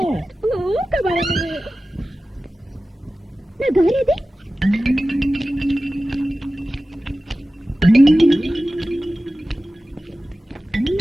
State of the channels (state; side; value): normal; both; correlation 0.95